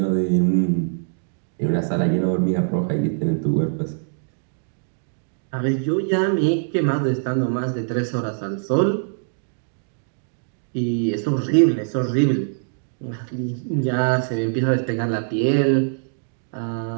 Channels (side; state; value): left; silent; digital silence